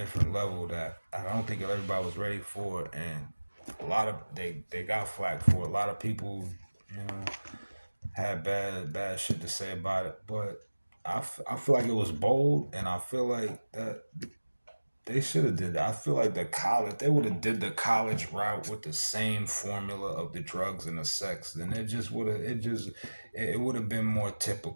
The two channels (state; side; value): inverted; both; correlation -1.00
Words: level that I don't think everybody was ready for, and a lot of they got flack for it. A lot of people, you know, had bad shit to say about it, but I feel like it was bold, and I feel like that they should have did that. I feel like the college they would have did the college route with the same formula of the drugs and the sex, then it would have been more